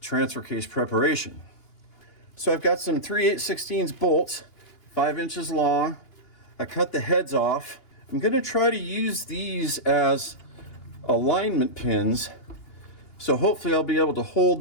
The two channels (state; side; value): late; right; 2.8 ms